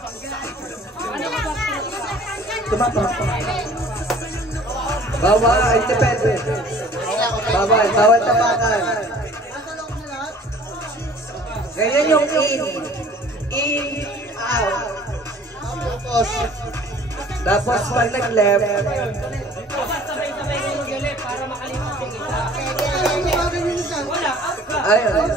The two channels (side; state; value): both; normal; correlation 0.50